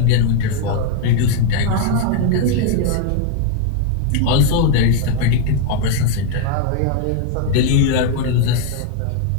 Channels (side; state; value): both; different; correlation 0.00